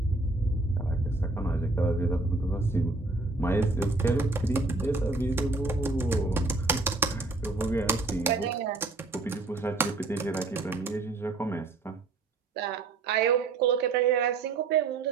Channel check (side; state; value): left; quieter; 3.5 dB